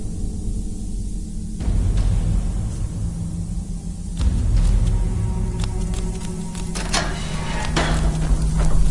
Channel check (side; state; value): both; identical; correlation 1.00